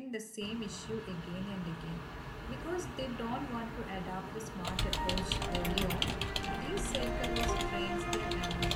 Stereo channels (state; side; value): identical; both; correlation 1.00